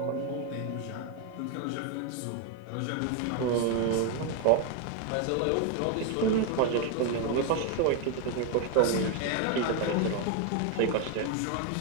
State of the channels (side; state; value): both; different; correlation 0.01